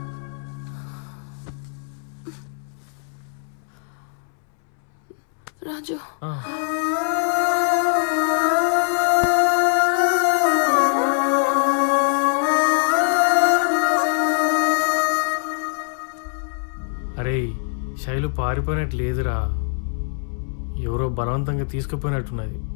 రాజు, అరే శైలు పారిపోయినట్టు లేదురా, ఎవరో బలవంతంగా తీసుకుపోయినట్టున్నది.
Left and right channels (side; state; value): right; silent; 64 dB below the other